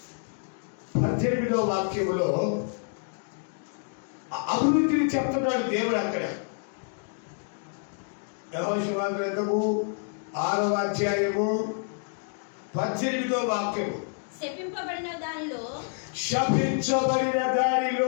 18వ వాక్యములో అభివృద్ధిని చెప్తున్నాడు దేవుడు అక్కడ. యెహోషువ గ్రంథము 6వ అధ్యాయము 18వ వాక్యము. శపింపబడిన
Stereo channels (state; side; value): silent; right; 59 dB below the other